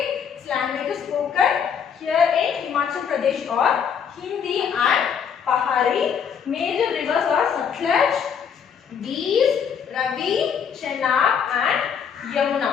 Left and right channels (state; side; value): quieter; right; 7.4 dB